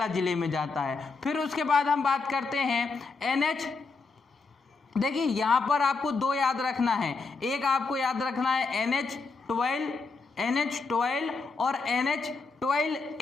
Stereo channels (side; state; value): right; quieter; 4.3 dB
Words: जिले में जाता है। फिर उसके बाद हम बात करते हैं देखिए यहाँ पर आपको 2 याद रखना है, एक आपको याद रखना है NH12 और